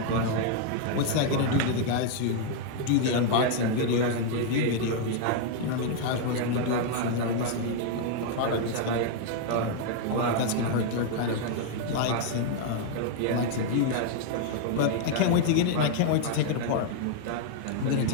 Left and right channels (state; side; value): different; both; correlation 0.00